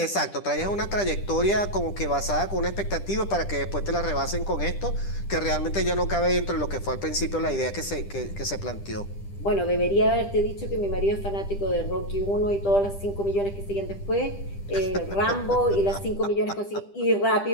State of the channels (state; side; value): late; right; 10 ms